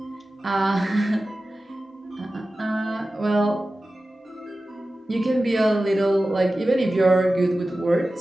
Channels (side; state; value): both; normal; correlation 0.95